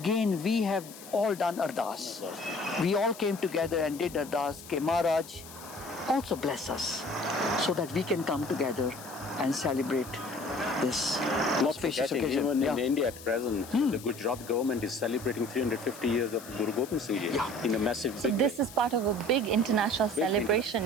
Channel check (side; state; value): left; noise; hiss, 17 dB below the sound